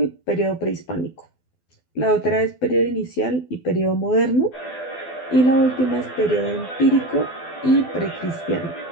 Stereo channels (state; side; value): late; right; 12 ms